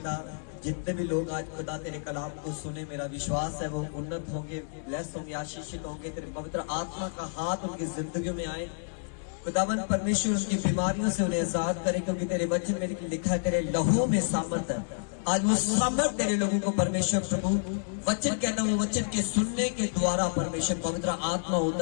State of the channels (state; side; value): silent; right; digital silence